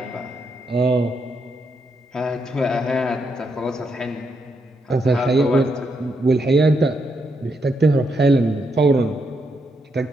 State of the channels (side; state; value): both; normal; correlation 0.79